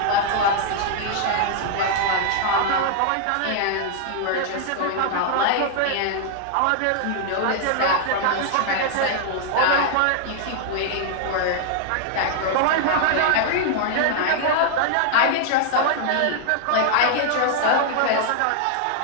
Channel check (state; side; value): different; both; correlation -0.01